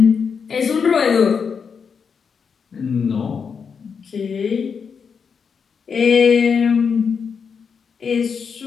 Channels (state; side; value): quieter; right; 6.2 dB